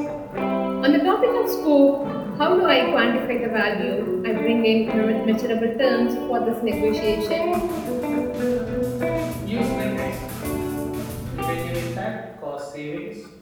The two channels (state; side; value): identical; both; correlation 1.00